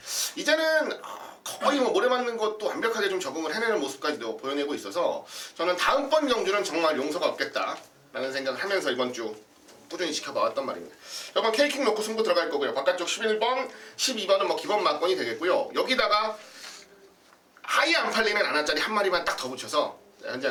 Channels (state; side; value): identical; both; correlation 1.00